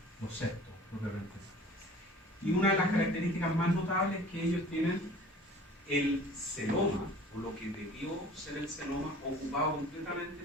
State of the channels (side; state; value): both; normal; correlation 0.46